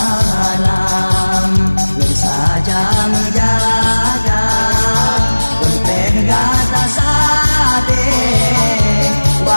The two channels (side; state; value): both; inverted; correlation -1.00